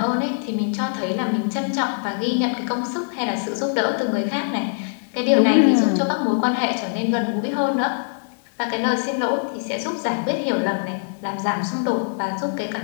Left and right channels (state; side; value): silent; right; 60 dB below the other